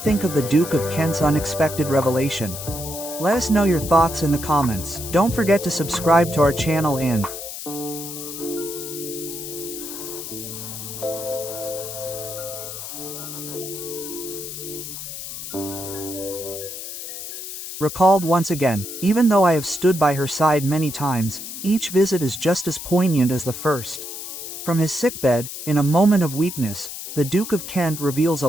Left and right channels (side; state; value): left; noise; hiss, 9 dB below the sound